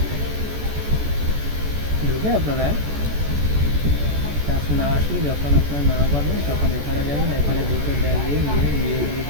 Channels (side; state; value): left; late; 14 ms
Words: ঢুকে আপনারা কাজ না আসলে, যখন আপনারা না পারবেন তখন এখানে যাবেন। এখানে ঢুকে দেখবেন নিয়োগ